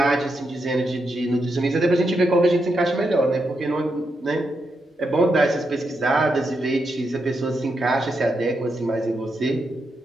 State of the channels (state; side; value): normal; both; correlation 0.84